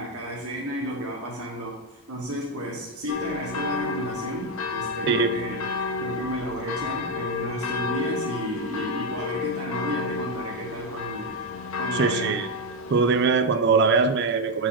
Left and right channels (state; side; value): normal; both; correlation 0.04